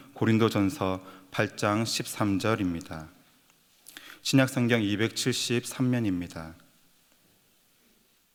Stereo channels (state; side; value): identical; both; correlation 1.00